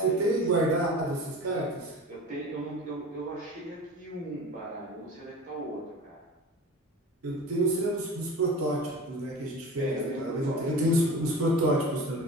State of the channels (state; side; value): normal; both; correlation 0.36